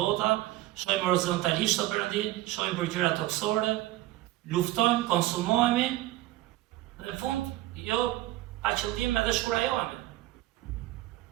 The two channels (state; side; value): quieter; left; 16.5 dB